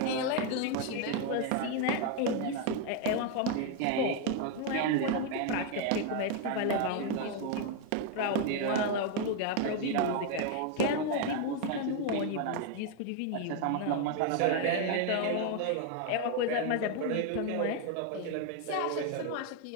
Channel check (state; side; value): different; both; correlation 0.01